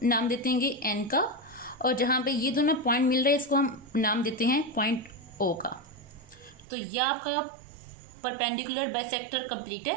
नाम देते हैं एन का, और जहाँ पे ये दोनों पॉइंट मिल रहे हैं इसको हम नाम देते हैं पॉइंट ओ का। तो यह आपका परपेंडिकुलर बाइसेक्टर कंप्लीट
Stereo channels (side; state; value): left; drops out; at 6.7 s